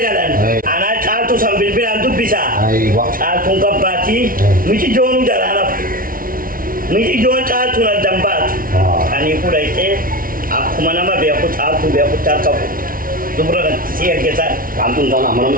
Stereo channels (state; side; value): late; left; 0.42 ms